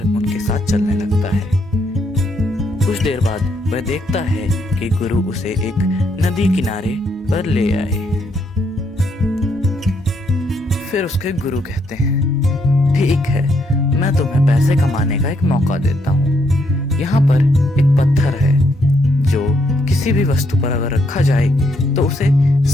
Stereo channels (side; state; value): both; normal; correlation 0.74